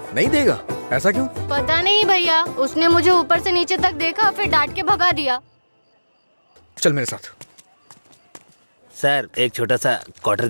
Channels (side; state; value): both; inverted; correlation -1.00